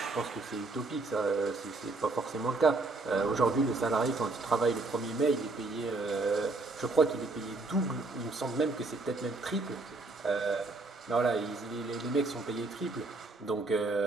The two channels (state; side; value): quieter; left; 3.3 dB